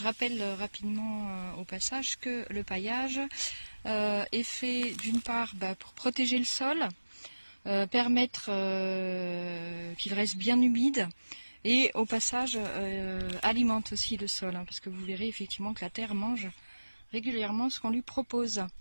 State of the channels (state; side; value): inverted; both; correlation -1.00